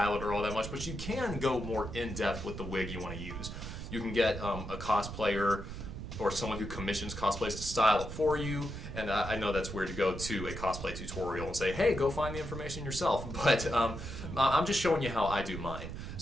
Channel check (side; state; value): right; noise; rumble, 8 dB below the sound